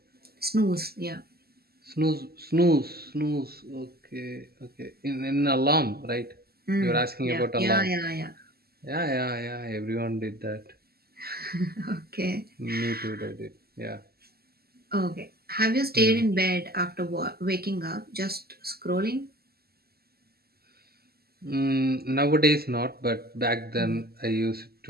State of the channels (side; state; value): left; late; 0.45 ms